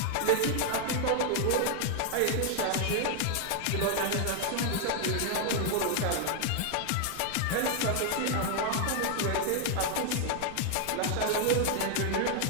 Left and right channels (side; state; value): both; different; correlation 0.00